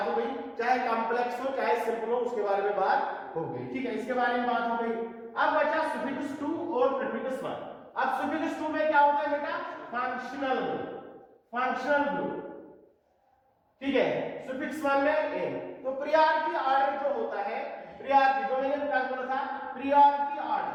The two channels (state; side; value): identical; both; correlation 1.00